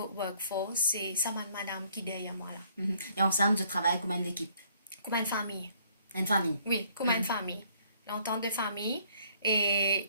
workforce, c'est ça madame qui est derrière moi là. Et ensemble, je travaille comme une équipe. Comme une famille. Une famille. Oui, comme une famille. L'entente de famille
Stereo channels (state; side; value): inverted; both; correlation -0.63